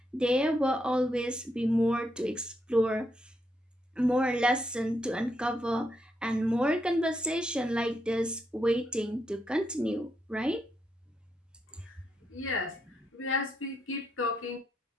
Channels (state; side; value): normal; both; correlation 0.80